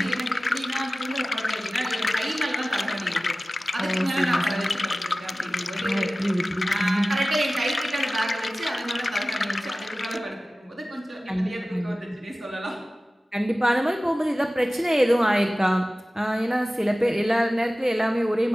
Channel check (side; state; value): both; normal; correlation 0.97